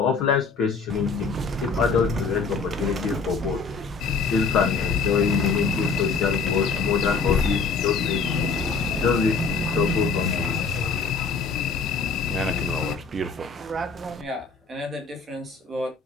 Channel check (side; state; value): right; quieter; 4.9 dB